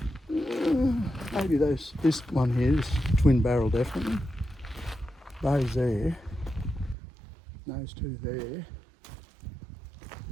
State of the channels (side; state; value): left; drops out; at 7.0 s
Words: maybe this one here, this twin barrel definitely. Those there, those 2 there,